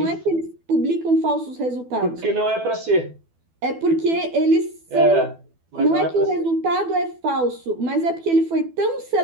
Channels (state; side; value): late; left; 12 ms